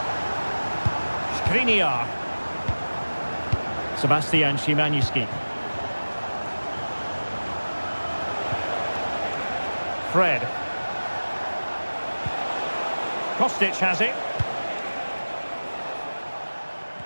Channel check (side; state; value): both; inverted; correlation -1.00